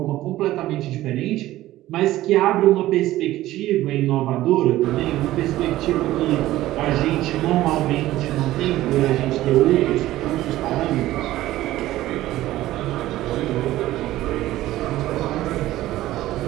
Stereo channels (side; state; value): left; quieter; 15.5 dB